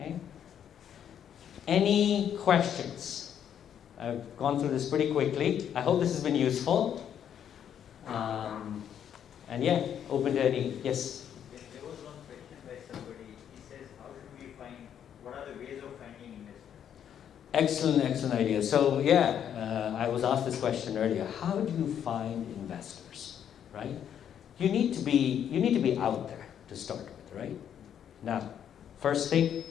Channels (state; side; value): quieter; right; 9.2 dB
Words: Any questions? I've gone through this pretty quickly. I hope this has been useful. And yeah, open to any. Yes? Excellent, excellent idea. So yeah, I was asked this question earlier. How do you find investors, right? You need to be out there to start with, right? Now, first thing,